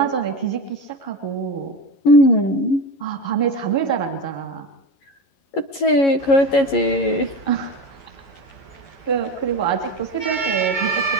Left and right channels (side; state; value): right; late; 11 ms